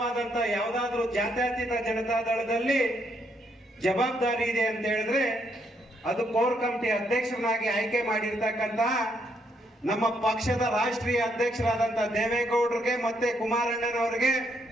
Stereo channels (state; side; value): normal; both; correlation 0.74